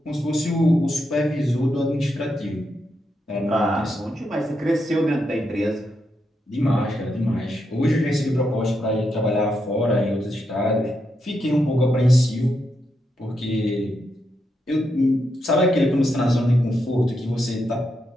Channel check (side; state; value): both; normal; correlation 0.83